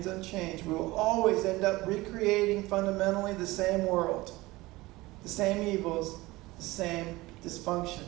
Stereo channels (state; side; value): quieter; left; 20.0 dB